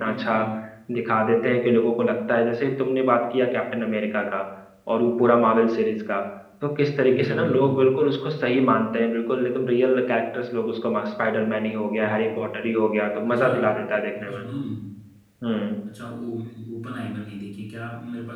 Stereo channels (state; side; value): identical; both; correlation 1.00